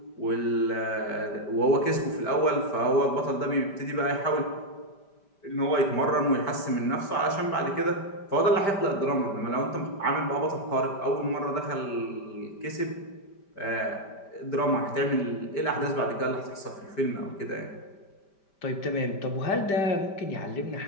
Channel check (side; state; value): right; late; 5.1 ms